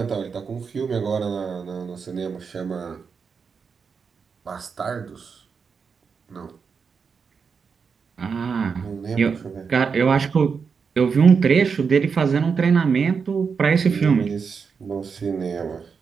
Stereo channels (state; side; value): quieter; left; 5.8 dB